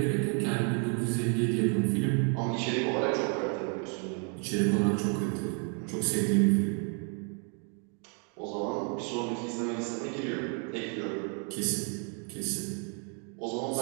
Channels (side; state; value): left; quieter; 40.0 dB